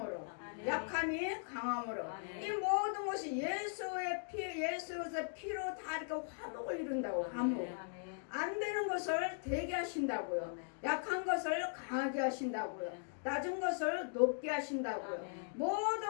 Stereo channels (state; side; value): silent; right; digital silence